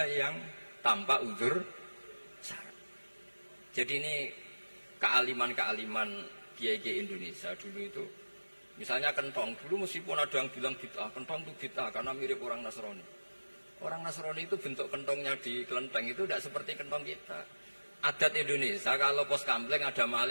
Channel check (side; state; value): both; inverted; correlation -1.00